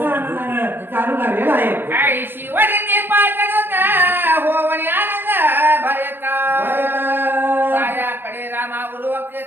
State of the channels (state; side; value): late; left; 0.098 ms